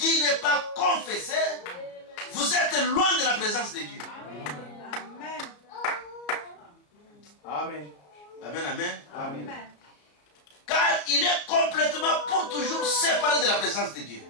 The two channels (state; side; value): late; right; 34 ms